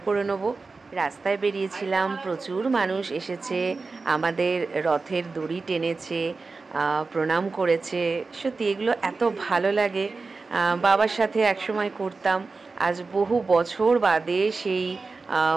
করে নেবো। রাস্তায় বেরিয়েছিলাম, প্রচুর মানুষ এসেছে, আমাদের রথের দড়ি টেনেছে, প্রণাম করেছে। সত্যি এগুলো এত ভালো লাগে। বাবার সাথে একসময় করতাম, আজ বহু বছর বাদে সেই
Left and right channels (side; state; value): left; quieter; 4.0 dB